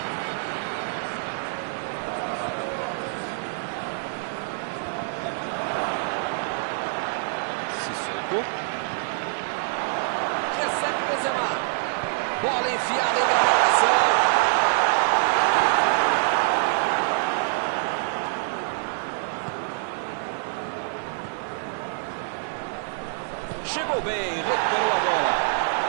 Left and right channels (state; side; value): silent; left; digital silence